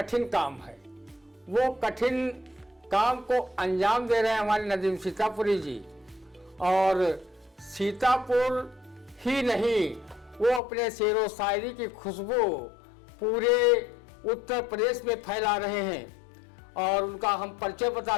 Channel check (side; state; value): right; drops out; at 10.6 s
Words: काम है। वो कठिन काम को अंजाम दे रहे हैं हमारे नदीम सीतापुरी जी। और सीतापुर ही नहीं, वो अपने शेर व शायरी की खुशबू पूरे उत्तर प्रदेश में फैला रहे हैं। और उनका हम परिचय